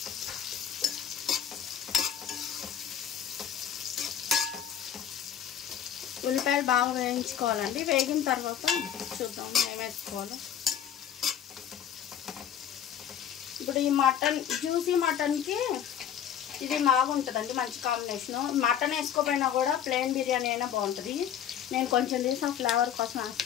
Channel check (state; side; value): quieter; right; 9.4 dB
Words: ఉల్లిపాయలు బాగా వేయించుకోవాలండి. వేగిన తర్వాత చూద్దాం ఏం వేసుకోవాలో. ఇప్పుడు ఈ మటన్, జ్యూసీ మటన్కి ఇది బాగుంటుందండి, మంచి కాంబినేషను. మటన్ వేసుకోపోయినా కూడా ప్లెయిన్ బిర్యానీ అయినా బాగుంటుంది. నేను కొంచెం తీసి ఆ ఫ్లేవర్ కోసం